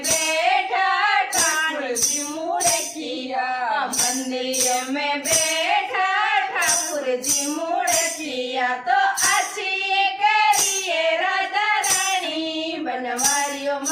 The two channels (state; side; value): identical; both; correlation 1.00